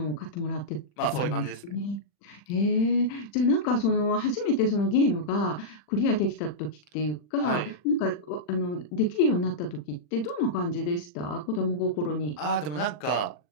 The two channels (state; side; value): late; right; 40 ms